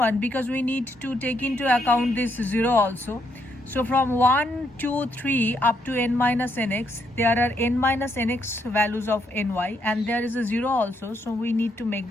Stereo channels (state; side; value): normal; both; correlation 0.76